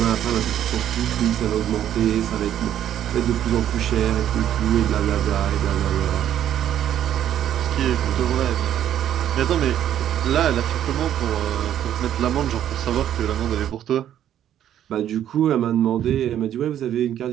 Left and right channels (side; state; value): left; quieter; 10.8 dB